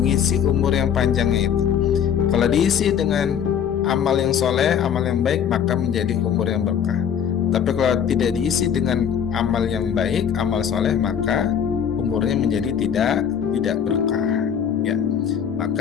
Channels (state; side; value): quieter; right; 8.2 dB